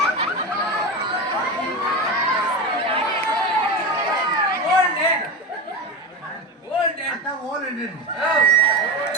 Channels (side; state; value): both; normal; correlation 0.21